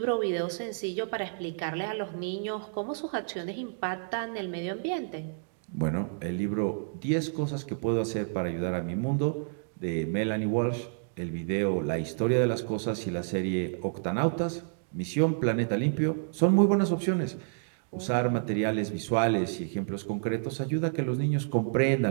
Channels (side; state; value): left; silent; digital silence